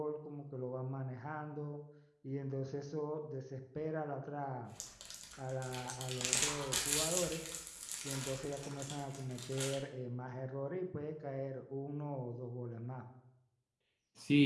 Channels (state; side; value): identical; both; correlation 1.00